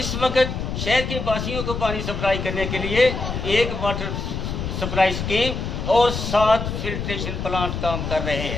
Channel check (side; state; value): left; noise; rumble, 4 dB below the sound